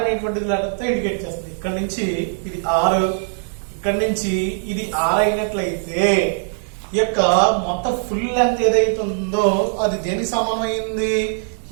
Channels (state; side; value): silent; left; digital silence